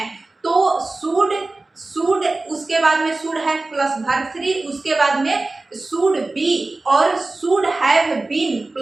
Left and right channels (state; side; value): quieter; left; 3.2 dB